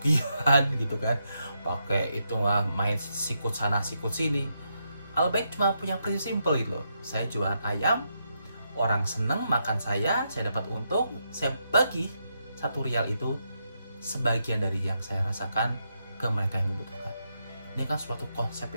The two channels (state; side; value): inverted; both; correlation -0.81